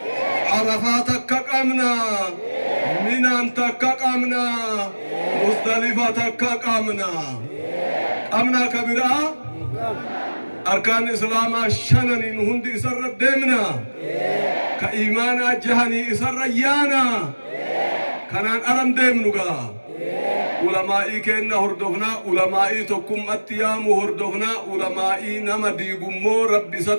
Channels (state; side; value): inverted; both; correlation -1.00